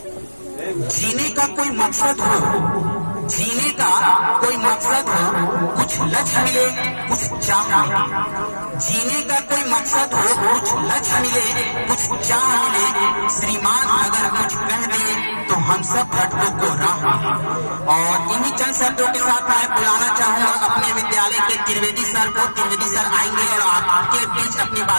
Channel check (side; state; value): both; inverted; correlation -1.00